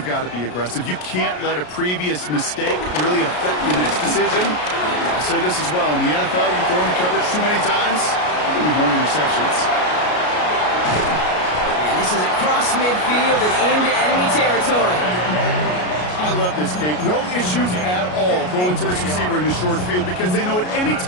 got to be aggressive. You can't let a previous mistake really affect your next decision. I'll say this as well. In the NFL, you throw in the coverage too many times, you need more interceptions. And this is across midfield and into enemy territory. I love this, Kate. No issues at all going to this receiver in the short field because they know at any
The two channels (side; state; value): right; late; 33 ms